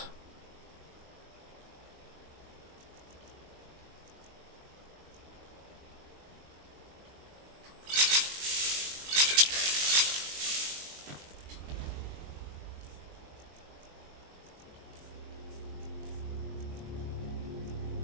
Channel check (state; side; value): late; left; 21 ms